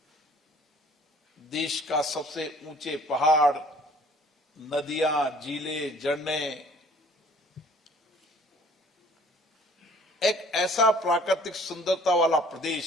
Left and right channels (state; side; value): normal; both; correlation 0.54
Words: देश का सबसे ऊंचे पहाड़, नदियां, झीलें, झरने, एक ऐसा प्राकृतिक सुंदरता वाला